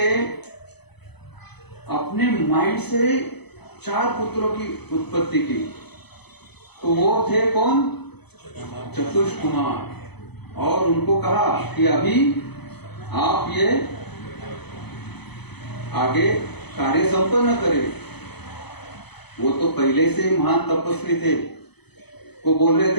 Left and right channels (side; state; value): right; late; 0.99 ms